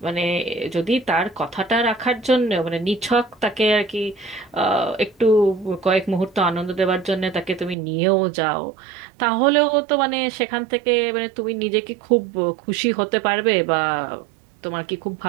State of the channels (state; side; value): drops out; left; at 7.8 s